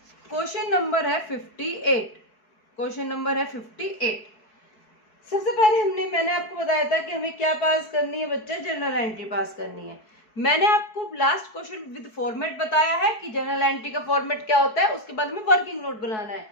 क्वेश्चन नंबर है 58, क्वेश्चन नंबर है 58। सबसे पहले मैंने आपको बताया था कि हमें क्या पास करनी है बच्चे, जनरल एंट्री पास करनी है। मैंने आपको लास्ट क्वेश्चन विद फॉर्मेट बताया है कि जनरल एंट्री का फॉर्मेट क्या होता है, उसके बाद हमें वर्किंग नोट बनाना है।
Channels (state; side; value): late; right; 4.7 ms